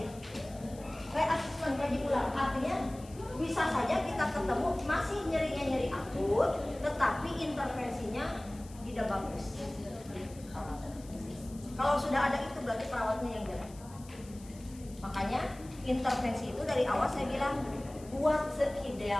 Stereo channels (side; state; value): left; noise; hiss, 22 dB below the sound